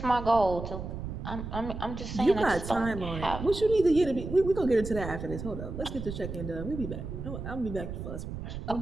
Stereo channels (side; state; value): right; noise; rumble, 7 dB below the sound